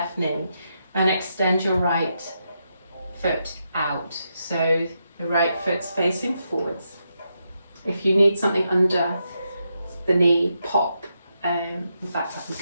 knee and extend your right foot out. So the right foot's facing forwards. If you need something under the knee, pop. In fact, I'm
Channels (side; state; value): both; inverted; correlation -0.83